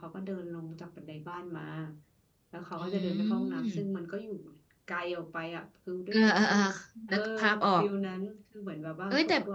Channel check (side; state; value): both; identical; correlation 1.00